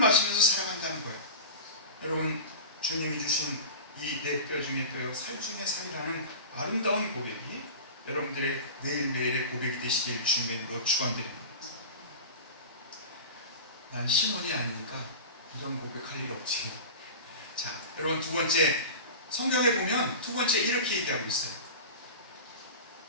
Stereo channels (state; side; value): inverted; both; correlation -0.30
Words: 살아간다는 거예요. 여러분, 주님이 주신 이 내 뼈 중에 뼈요 살 중에 살이라는 아름다운 고백이 여러분들의 매일매일의 고백이 되시길 주님의 이름으로 축원드립니다. 난 신혼이 아니니까 이런 고백할 일 없지. 자, 여러분, 두 번째, 성경에 보면 두 번째 이렇게 얘기하고 있어요.